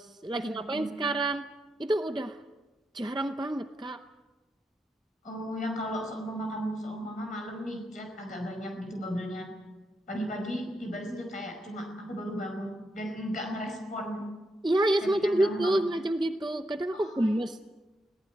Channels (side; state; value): both; normal; correlation 0.82